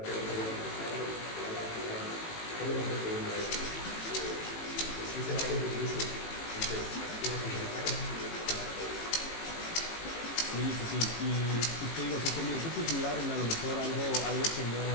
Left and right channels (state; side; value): late; right; 18 ms